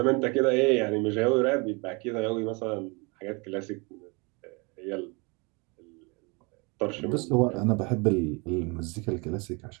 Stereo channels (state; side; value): quieter; left; 29.7 dB